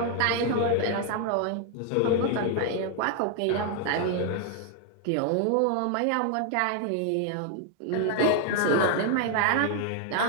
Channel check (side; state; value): both; different; correlation 0.00